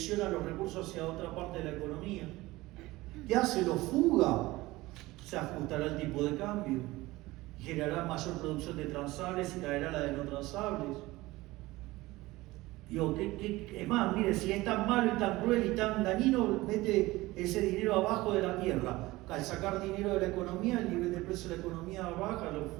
los recursos hacia otra parte de la economía. ¿Qué hace? Lo fuga. Se ajustará el tipo de cambio, generará mayor producción de transables y caerá la de no transables. Es más, mire, si es tan malo y tan cruel y tan dañino, mete ese dinero abajo de la tierra. Al sacar dinero de la economía, el nivel de precio de la economía baja, lo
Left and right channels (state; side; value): quieter; left; 19.5 dB